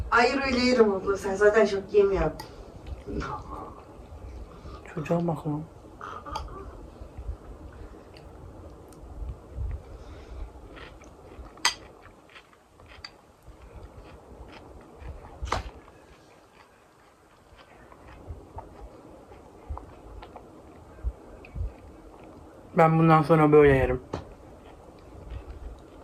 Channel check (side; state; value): both; identical; correlation 1.00